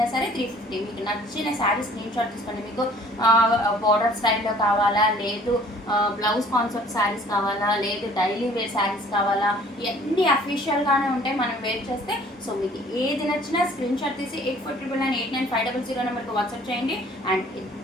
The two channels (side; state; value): both; normal; correlation 0.54